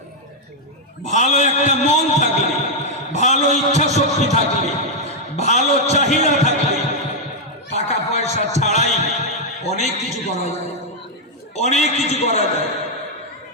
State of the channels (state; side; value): normal; both; correlation -0.01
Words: ভালো একটা মন থাকলে, ভালো ইচ্ছা শক্তি থাকলে, ভালো চাহিদা থাকলে টাকা পয়সা ছাড়াই অনেক কিছু করা যায়, অনেক কিছু করা যায়।